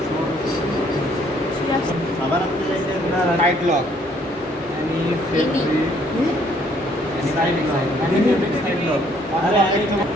আবার আপনি চাইছেন না টাইট লক। আরে আরেকটা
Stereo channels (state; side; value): normal; both; correlation 0.64